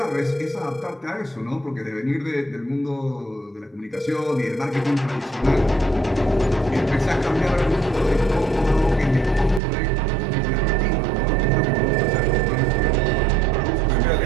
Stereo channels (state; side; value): drops out; left; at 9.6 s